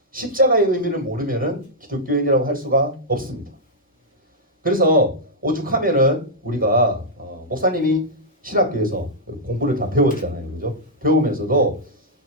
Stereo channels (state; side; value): normal; both; correlation -0.07